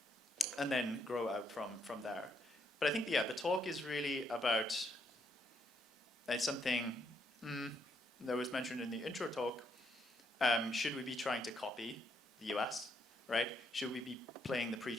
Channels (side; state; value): both; normal; correlation 0.75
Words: then grow out from there. But I think, yeah, the talk is really about something that was mentioned in the intro talk. Should we be trying to copy the US, right? Should we be playing the